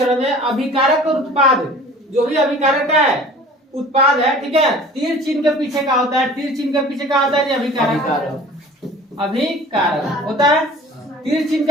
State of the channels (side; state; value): both; normal; correlation 0.45